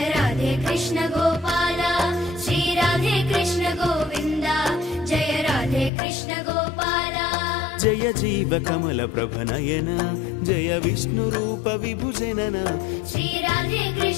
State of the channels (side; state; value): right; drops out; at 5.9 s